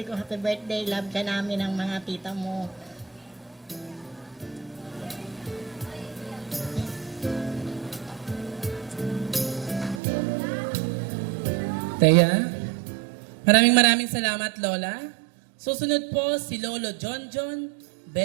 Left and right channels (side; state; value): left; drops out; at 10.0 s